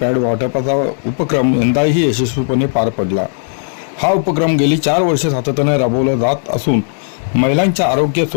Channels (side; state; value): right; silent; digital silence